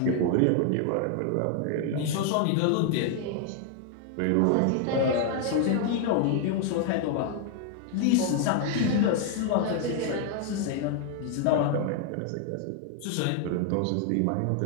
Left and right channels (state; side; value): different; both; correlation 0.00